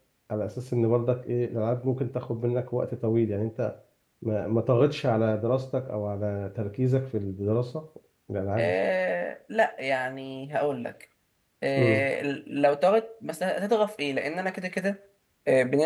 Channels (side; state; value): both; identical; correlation 1.00